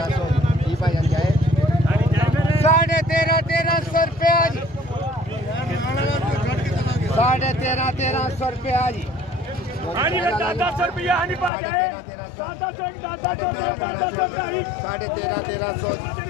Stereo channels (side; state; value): right; drops out; at 11.5 s